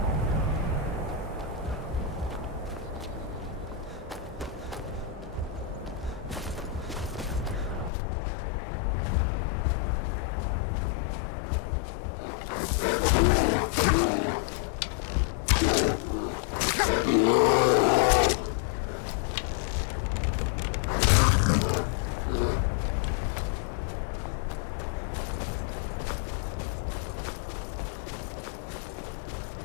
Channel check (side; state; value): right; drops out; at 7.9 s